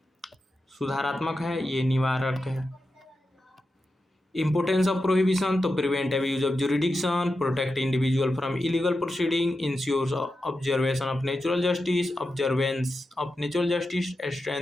सुधारात्मक है, ये निवारक है। Importance of prohibition to prevent abuse of jurisdiction, protect individual from illegal proceeding, ensures observation of natural justice, observance of natural justice,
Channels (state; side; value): normal; both; correlation 0.90